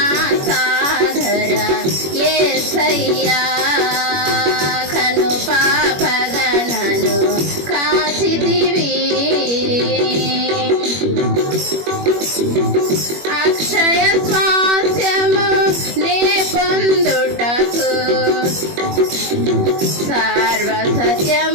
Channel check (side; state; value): left; late; 21 ms